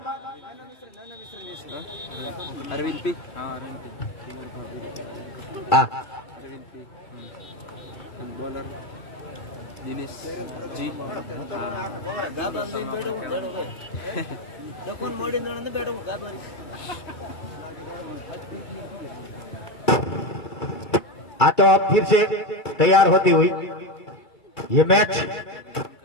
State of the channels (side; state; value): right; late; 2.3 ms